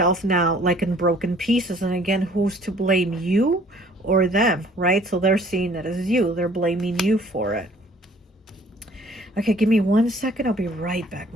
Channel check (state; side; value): normal; both; correlation 0.56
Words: now like in broken pieces. And again, who's to blame, you or them, right? So they're seeing it as you. They're blaming you for it. Okay, give me 1 second. I'll be right back.